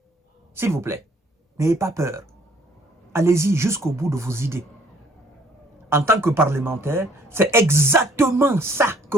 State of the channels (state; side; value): normal; both; correlation 0.61